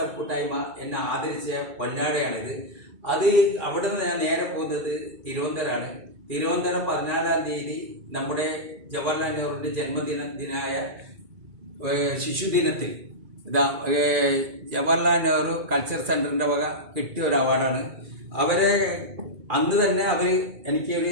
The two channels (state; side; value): late; left; 2.4 ms